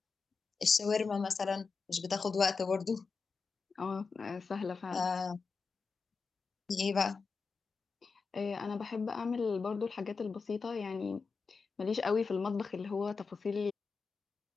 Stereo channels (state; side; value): quieter; right; 4.8 dB